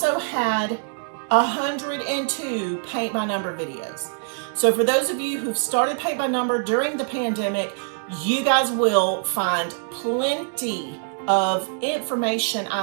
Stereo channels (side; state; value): left; silent; digital silence